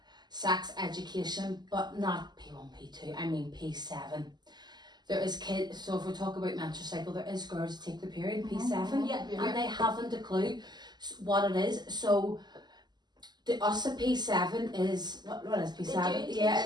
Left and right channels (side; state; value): left; late; 0.21 ms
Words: sex education, but not P1, P2, I mean P7. there is kids, so if we talk about menstrual cycle, there is girls who take their period P7 Yeah. and they haven't a clue what it is. So the us at P7 is what is P7? They do Yeah,